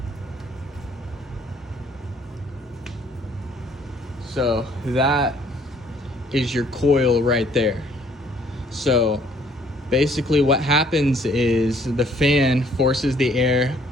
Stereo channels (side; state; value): both; normal; correlation 0.62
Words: So that is your coil right there. So basically what happens is the fan forces the air